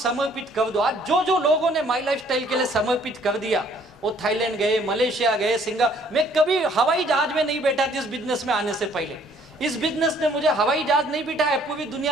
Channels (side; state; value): both; normal; correlation 0.61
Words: कर दो। आज जो जो लोगों ने माई लाइफस्टाइल के लिए समर्पित कर दिया, वो थाईलैंड गए, मलेशिया गए, सिंगापुर। मैं कभी हवाई जहाज में नहीं बैठा था इस बिजनेस में आने से पहले। इस बिजनेस ने मुझे हवाई जहाज नहीं बिठाया, पूरी